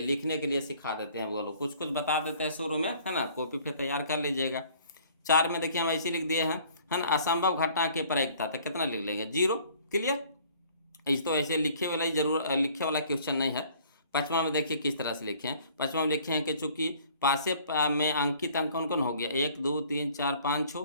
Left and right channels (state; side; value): inverted; both; correlation -0.55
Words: लिखने के लिए सिखा देते हैं, बोलो कुछ बता देते हैं शुरू में, है ना, कॉपी पे तैयार कर लीजिएगा। 4 में देखिए हम ऐसे लिख दिए हैं, है ना, असंभव घटना की प्रायिकता, तो कितना लिख लेंगे 0। क्लियर। इस तो ऐसे लिखे वाला ही जरूर, लिखे वाला क्वेश्चन नहीं है, पाँचवा में देखिए किस तरह से लिखे हैं। पाँचवा में लिखे हैं कि चूंकि पासे में अंकित अंक कौन कौन हो गया, 1 2 3 4 5